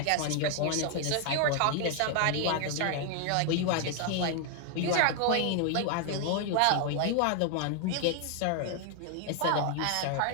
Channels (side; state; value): both; different; correlation 0.00